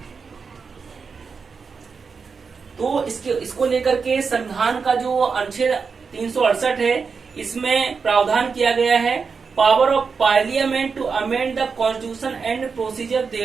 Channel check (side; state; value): left; quieter; 5.3 dB